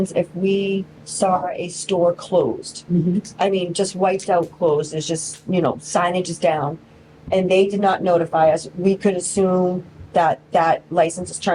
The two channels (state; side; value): identical; both; correlation 1.00